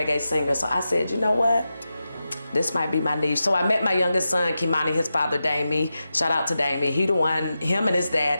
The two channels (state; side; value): inverted; both; correlation -0.91